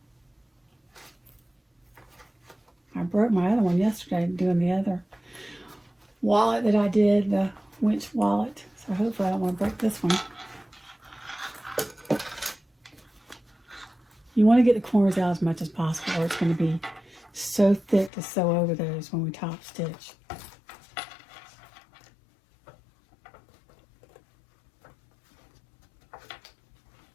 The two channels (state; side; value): drops out; right; at 18.1 s